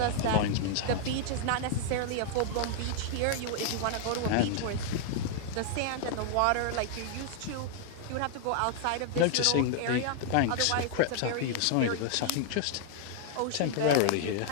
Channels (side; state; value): both; different; correlation -0.01